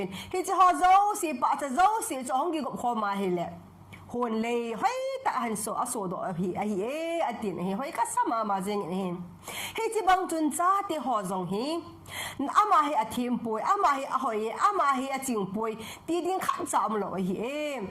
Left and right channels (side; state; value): both; identical; correlation 1.00